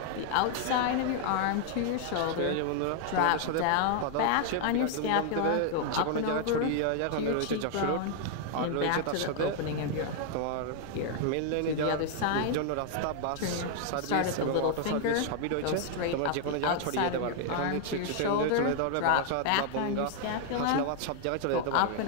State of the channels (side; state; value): both; different; correlation 0.00